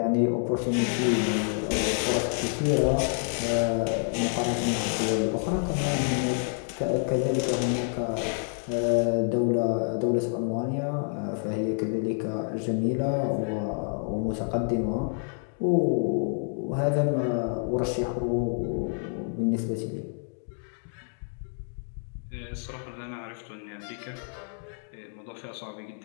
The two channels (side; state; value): right; silent; 59 dB below the other